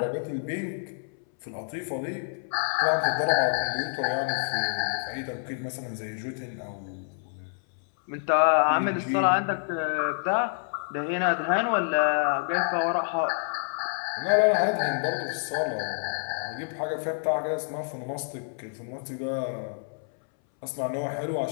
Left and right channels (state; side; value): silent; right; 59 dB below the other